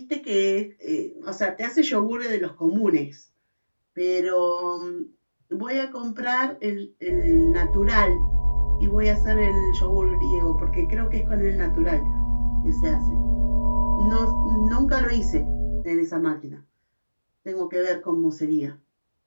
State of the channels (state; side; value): inverted; both; correlation -1.00